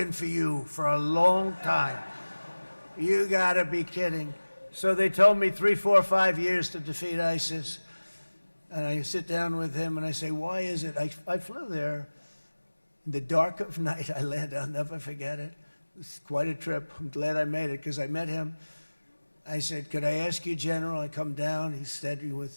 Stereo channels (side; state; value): both; inverted; correlation -1.00